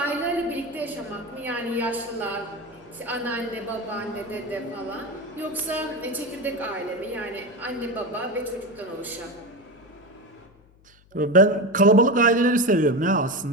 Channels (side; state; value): left; noise; hum, 29 dB below the sound